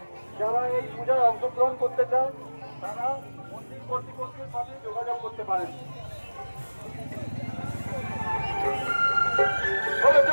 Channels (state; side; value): inverted; both; correlation -1.00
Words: যারা এই পূজায় অংশগ্রহণ করতে চান তারা মন্দির কর্তৃপক্ষের সাথে যোগাযোগ করতে পারেন।